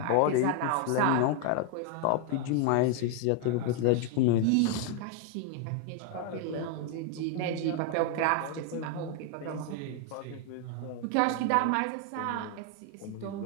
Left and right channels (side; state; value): both; different; correlation 0.00